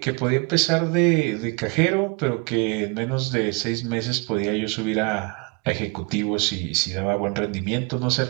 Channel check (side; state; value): left; quieter; 30.1 dB